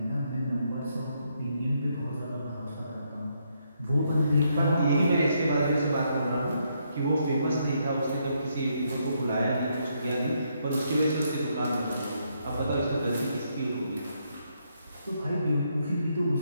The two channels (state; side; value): inverted; both; correlation -0.76